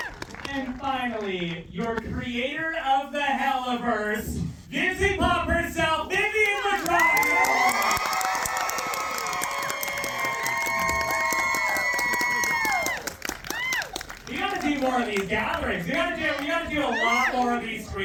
And finally, your creator of the Helluverse, Dizzy Pop herself, Vivian Madrona. We gotta do more of these gatherings. We gotta do a lot more of these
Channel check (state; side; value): identical; both; correlation 1.00